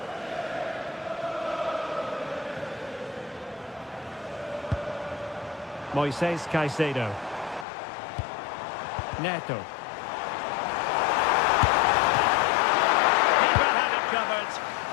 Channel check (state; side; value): drops out; right; at 7.7 s